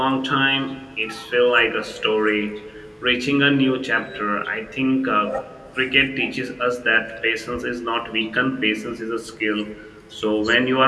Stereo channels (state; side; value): identical; both; correlation 1.00